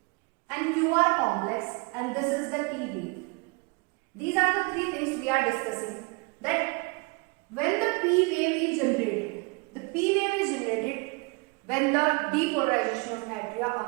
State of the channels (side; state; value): left; quieter; 29.4 dB